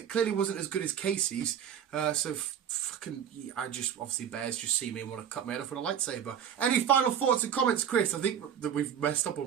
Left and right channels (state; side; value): quieter; left; 8.9 dB